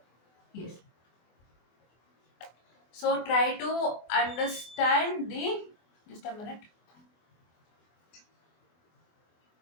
Yes. So try to understand the, just a minute.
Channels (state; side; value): late; right; 24 ms